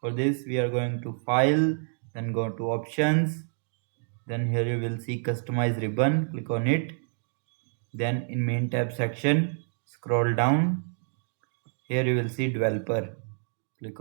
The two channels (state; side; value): silent; left; digital silence